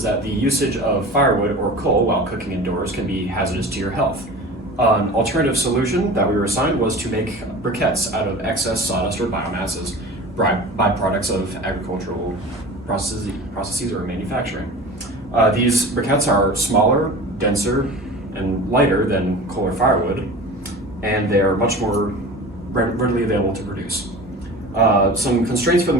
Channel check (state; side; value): normal; both; correlation 0.36